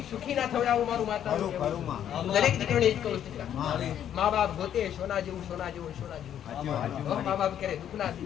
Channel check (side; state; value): right; quieter; 10.0 dB